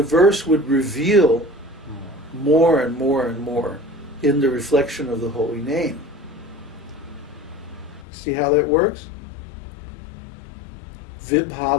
verse would reveal more and more and more in the reflection of the holy name. See how that works?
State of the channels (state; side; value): drops out; right; at 8.1 s